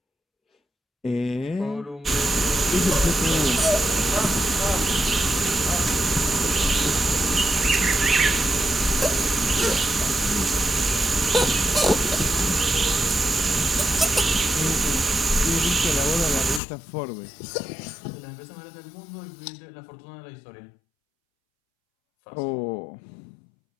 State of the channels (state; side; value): drops out; right; at 16.6 s